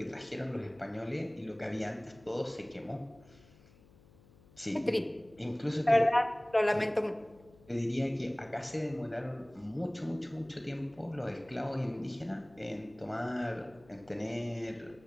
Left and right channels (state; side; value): noise; left; hum, 25 dB below the sound